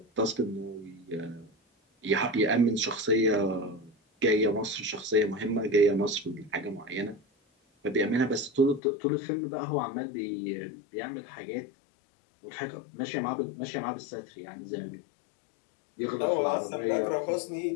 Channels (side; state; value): right; drops out; at 8.8 s